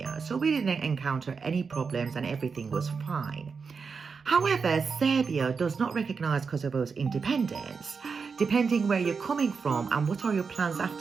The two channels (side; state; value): left; quieter; 5.3 dB